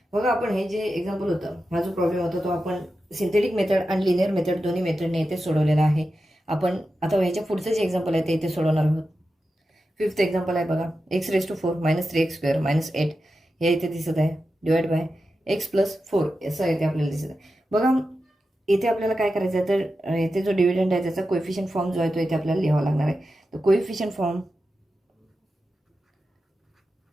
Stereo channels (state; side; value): normal; both; correlation 0.91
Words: बघा आपण हे जे एक्झाम्पल होतं हा जो प्रॉब्लेम होता तो आपण सिंथेटिक मेथड आणि लिनियर मेथड दोन्ही मेथडने इथे सोडवलेला आहे. आपण आता ह्याच्या पुढचं जे एक्झाम्पल आहे ते इथे सोडवणार आहोत. 5th एक्झाम्पल आहे बघा x⁴ -3x स्क्वेअर -8 हे इथे दिसत आहे डिवाइड बाय x + 4 असं इथे आपल्याला दिसत आहे. बघा इथे आपल्याला काय करायचं आहे तर इथे जो डिव्हिडंड आहे त्याचा कोएफिशियंट फॉर्म जो आहे तो इथे आपल्याला लिहावा लागणार आहे. तर coefficient form